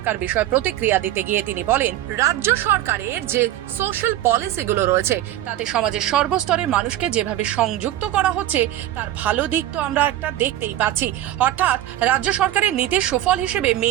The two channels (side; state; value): left; quieter; 13.4 dB